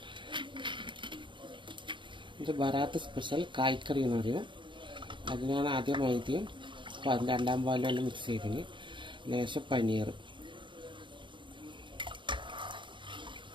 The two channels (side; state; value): left; late; 0.23 ms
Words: ഇത് ബറാത്ത് സ്പെഷ്യൽ കായ്ക്കറി എന്ന് പറയും. അതിനാണ് ആദ്യം മൈദയും 2ാം പാലും എല്ലാം മിക്സ് ചെയ്തിന്, ലേശം പനീർ,